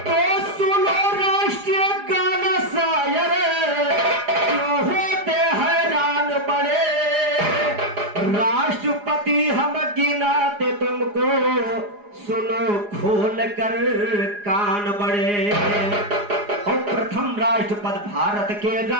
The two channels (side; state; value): left; late; 4.9 ms